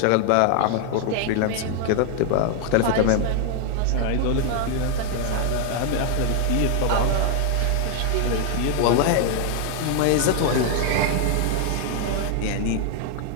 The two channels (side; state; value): both; different; correlation 0.00